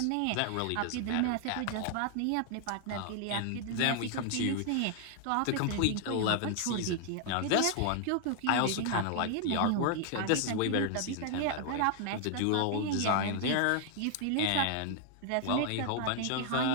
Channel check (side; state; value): both; different; correlation 0.00